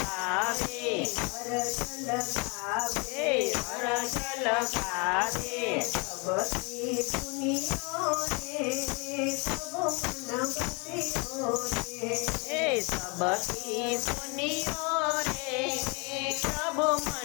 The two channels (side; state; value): right; quieter; 31.5 dB